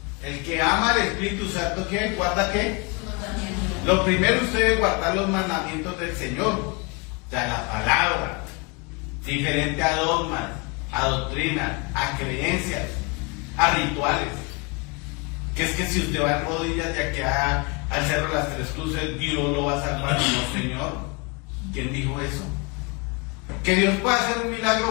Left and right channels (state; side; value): quieter; right; 29.1 dB